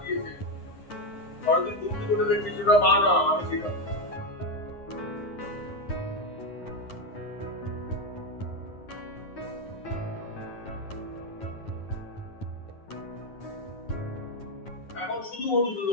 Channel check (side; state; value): right; late; 9.4 ms